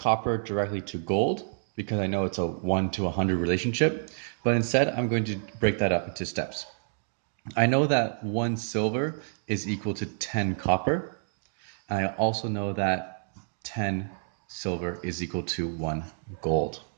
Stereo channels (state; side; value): silent; left; digital silence